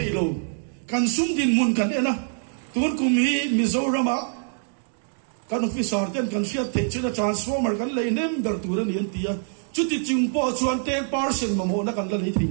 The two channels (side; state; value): left; silent; 62 dB below the other